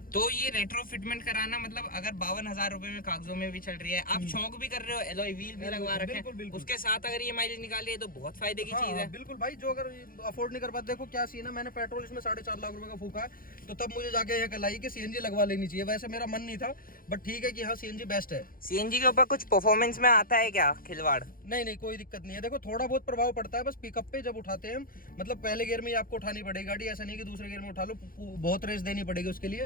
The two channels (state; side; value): late; right; 0.41 ms